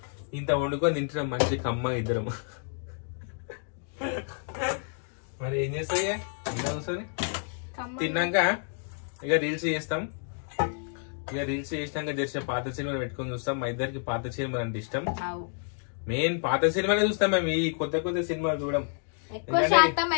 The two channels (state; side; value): silent; right; 58 dB below the other